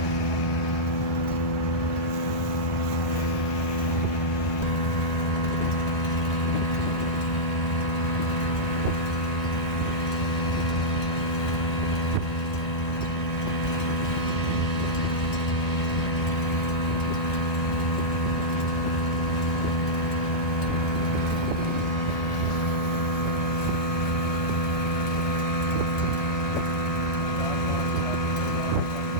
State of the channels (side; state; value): right; late; 1.4 ms